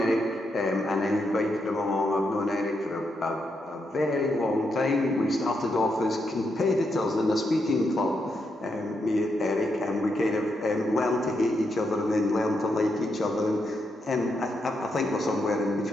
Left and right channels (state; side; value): normal; both; correlation 0.82